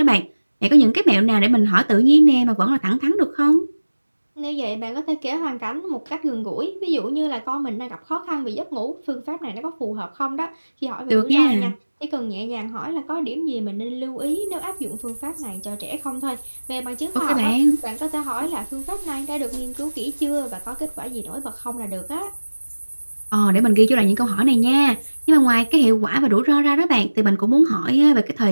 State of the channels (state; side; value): inverted; both; correlation -1.00